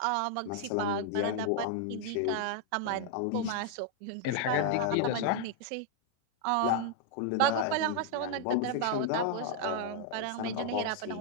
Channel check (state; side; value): different; both; correlation -0.01